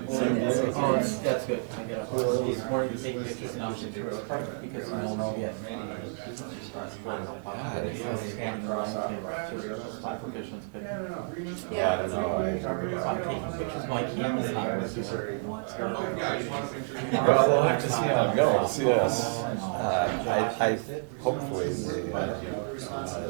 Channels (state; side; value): silent; left; 57 dB below the other